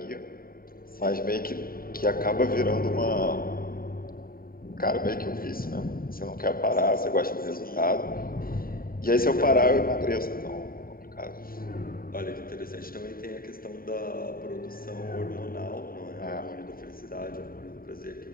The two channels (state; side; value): late; right; 0.43 ms